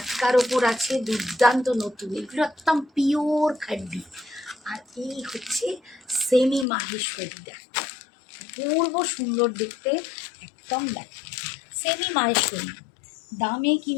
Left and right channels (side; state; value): right; drops out; at 6.7 s